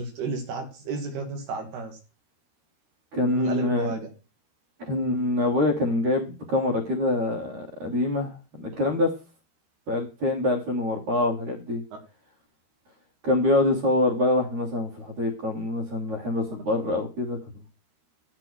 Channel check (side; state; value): left; late; 13 ms